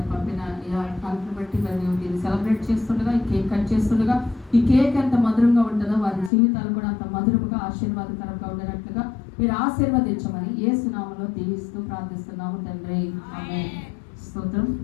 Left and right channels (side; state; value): right; drops out; at 6.3 s